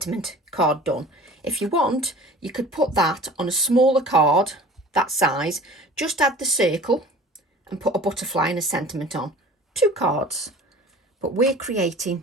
card done. If you want, you could put that on a smaller card, that size, just add the circle, and put a butterfly and a sentiment on. 2 cards. But we're creating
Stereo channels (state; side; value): normal; both; correlation 0.44